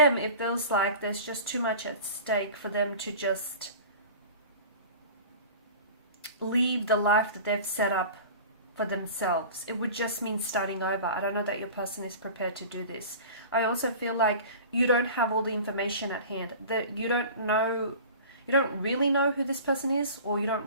it feels like there's just too much at stake for them to just leave the life that they've set up for themselves. It would just mean starting over. I don't know that your person is prepared to do this. I also feel like you don't have all the information at hand, that you don't really know who this person is, or you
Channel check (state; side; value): inverted; both; correlation -0.38